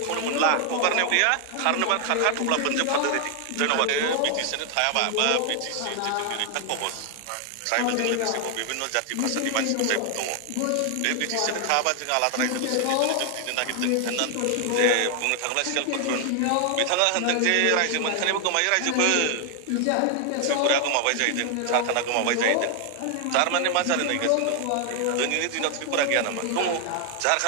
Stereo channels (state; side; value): different; both; correlation 0.00